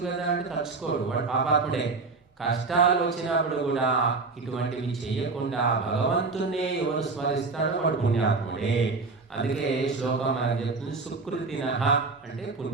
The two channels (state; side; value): quieter; left; 4.0 dB